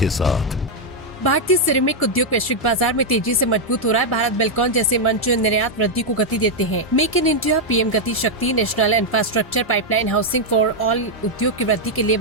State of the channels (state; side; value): normal; both; correlation -0.01